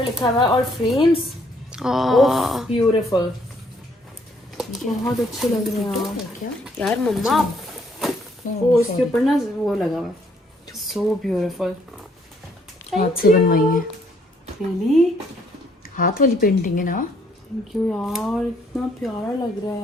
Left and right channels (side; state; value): both; normal; correlation 0.67